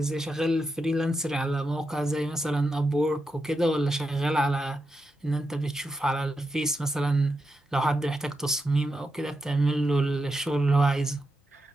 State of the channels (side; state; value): both; normal; correlation 0.86